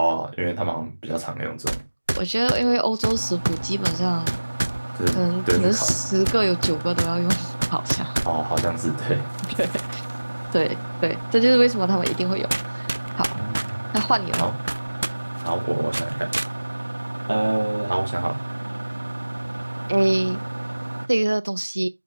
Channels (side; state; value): both; inverted; correlation -1.00